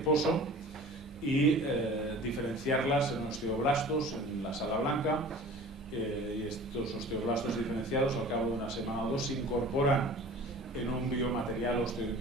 y diferenciarlas en osteoblastos en la sala blanca. Y estos osteoblastos diferenciados, al cabo de una semana o dos, se incorporan en un biomaterial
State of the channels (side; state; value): both; normal; correlation 0.42